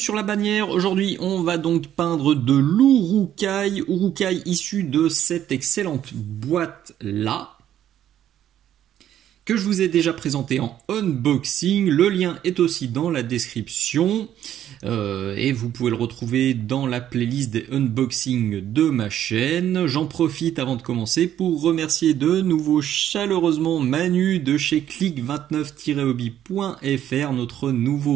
la bannière, aujourd'hui on va donc peindre de l'Urukai, issu de cette excellente boîte là, que je vous ai déjà présenté en unboxing. Le lien est aussi dans la description et vous pouvez le retrouver dans la playlist des unboxings de ma chaîne. J'en profite avant de commencer pour remercier de nouveau chaleureusement Manu de chez click29-hobby.fr, notre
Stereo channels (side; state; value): left; quieter; 11.1 dB